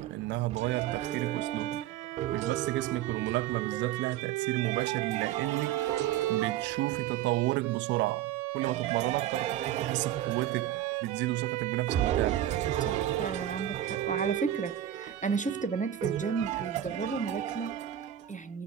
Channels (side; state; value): left; quieter; 11.7 dB